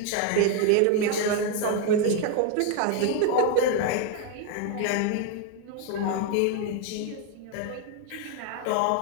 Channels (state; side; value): different; both; correlation 0.01